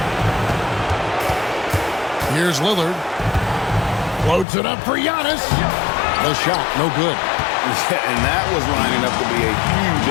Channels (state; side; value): drops out; right; at 4.5 s